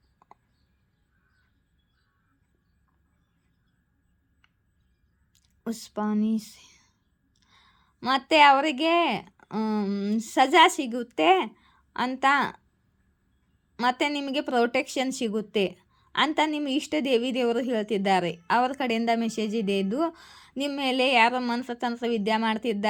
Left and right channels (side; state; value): both; identical; correlation 1.00